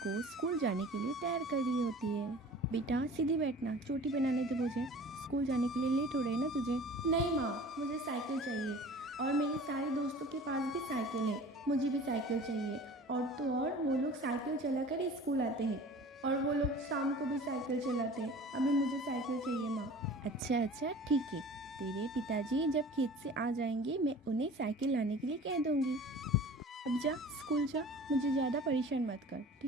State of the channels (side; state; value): both; normal; correlation 0.43